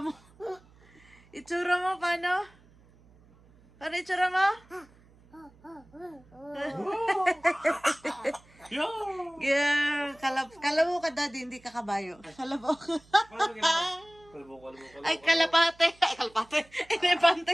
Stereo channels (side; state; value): right; noise; hum, 28 dB below the sound